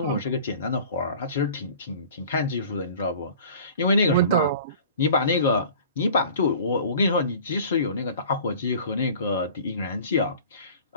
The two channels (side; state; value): both; inverted; correlation -0.45